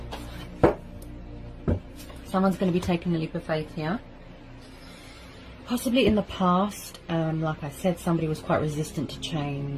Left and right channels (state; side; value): identical; both; correlation 1.00